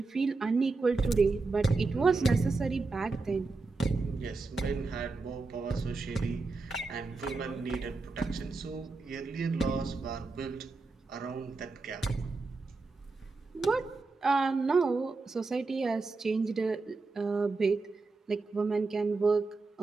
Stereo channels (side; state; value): left; quieter; 3.8 dB